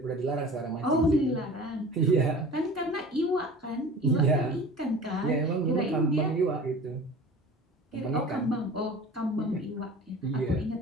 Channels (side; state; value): both; normal; correlation 0.40